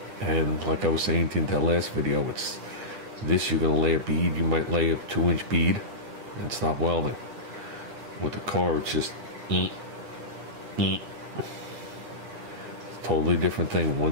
And like I was saying in that last video, it's this, you're going to lay a bead. You might lay a 2-inch bead and stop welding. With the car, it's just It's a totally different thing.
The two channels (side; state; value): left; late; 9.3 ms